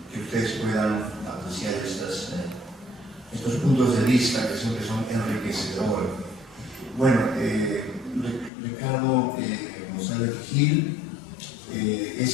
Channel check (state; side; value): drops out; right; at 8.5 s